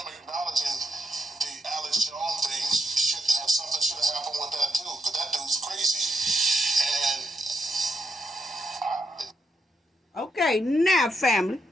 Okay, now family,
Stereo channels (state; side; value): normal; both; correlation 0.79